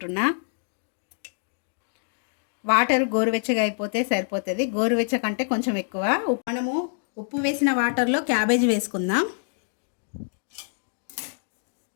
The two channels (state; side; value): silent; right; digital silence